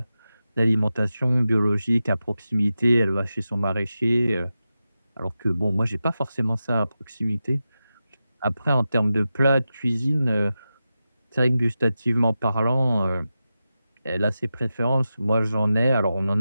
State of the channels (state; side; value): inverted; both; correlation -0.92